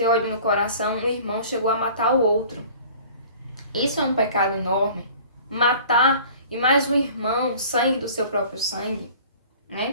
ódio no coração, um irmão chegou a matar o outro. Isso é um pecado enorme. Matar e mais um irmão, sangue do seu próprio sangue,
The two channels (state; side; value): inverted; both; correlation -0.47